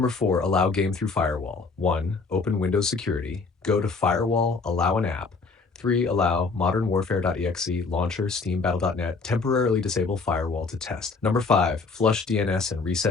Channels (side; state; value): right; quieter; 4.3 dB